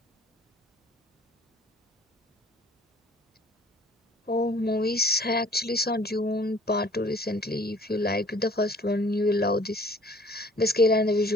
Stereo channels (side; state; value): both; normal; correlation 0.53